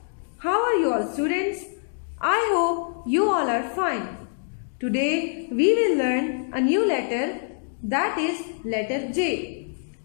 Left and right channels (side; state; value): right; silent; digital silence